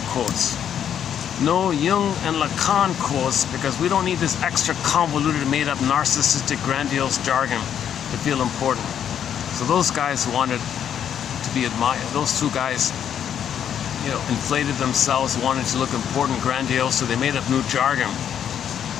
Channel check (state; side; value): quieter; right; 9.1 dB